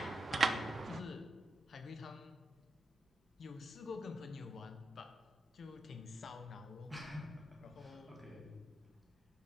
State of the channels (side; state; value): both; normal; correlation 0.86